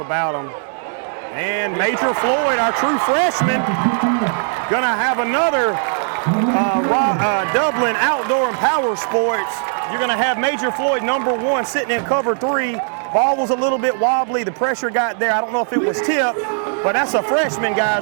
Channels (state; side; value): silent; left; digital silence